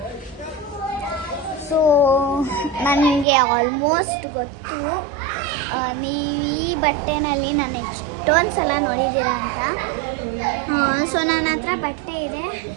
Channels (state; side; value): drops out; left; at 3.2 s